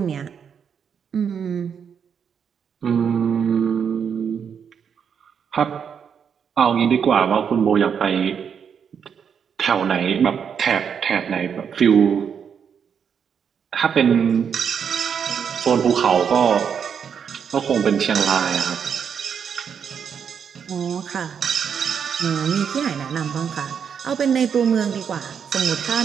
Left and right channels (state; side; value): quieter; left; 7.3 dB